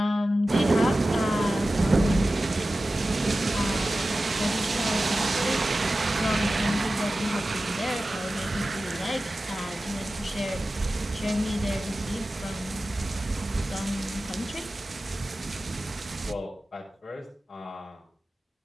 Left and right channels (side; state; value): both; normal; correlation 0.95